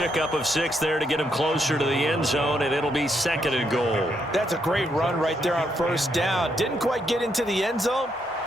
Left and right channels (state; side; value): normal; both; correlation 0.77